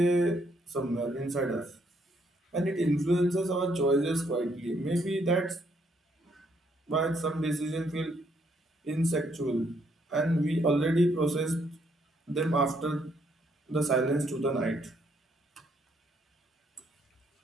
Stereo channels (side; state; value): both; normal; correlation 0.71